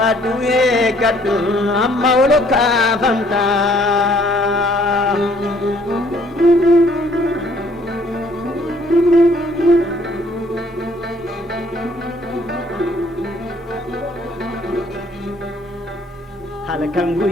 gatu amauluka famta halkan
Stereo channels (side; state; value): right; noise; rumble, 29 dB below the sound